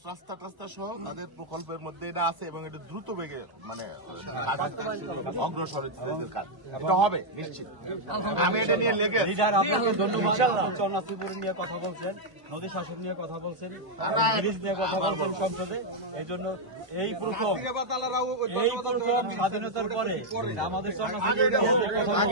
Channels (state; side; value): late; left; 1.0 ms